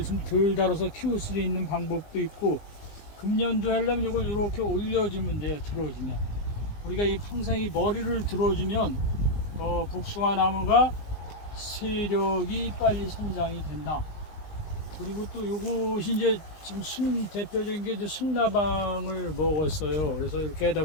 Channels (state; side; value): late; right; 19 ms